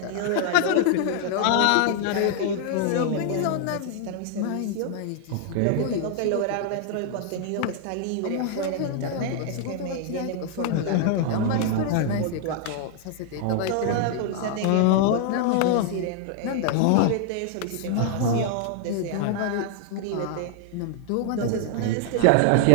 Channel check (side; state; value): both; different; correlation 0.00